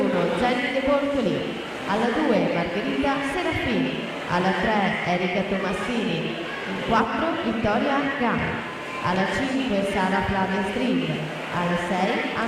Jenny De Bortoli, alla 2 Margherita Serafini, alla 3 Erika Tomassini, in 4 Vittoria Gai, alla 5 Sara Flavia Stream, alla 6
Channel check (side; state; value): both; identical; correlation 1.00